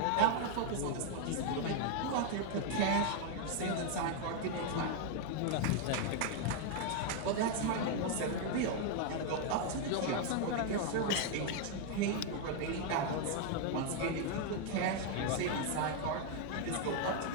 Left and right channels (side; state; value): both; different; correlation 0.00